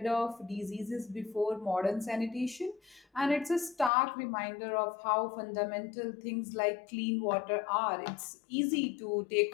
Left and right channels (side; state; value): right; drops out; at 3.9 s